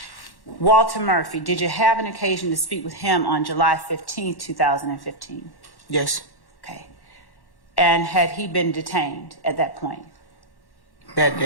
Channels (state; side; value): late; right; 1.1 ms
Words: Walter Murphy, did you have an occasion to speak with him on July 15, 2015? Yes. Okay. And had he been detained at that point? That